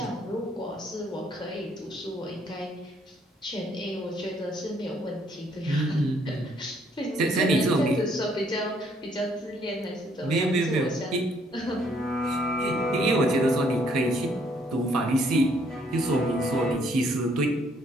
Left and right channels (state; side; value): normal; both; correlation 0.66